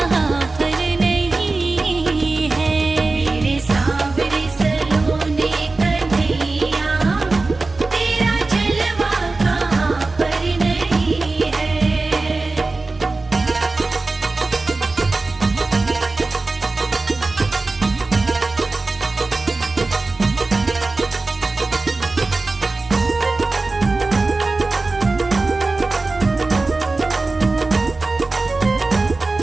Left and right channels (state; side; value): quieter; left; 3.5 dB